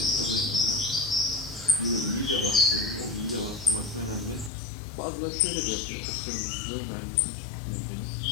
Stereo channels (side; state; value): right; drops out; at 4.5 s